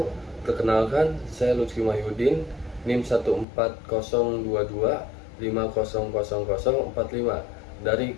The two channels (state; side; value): drops out; right; at 3.5 s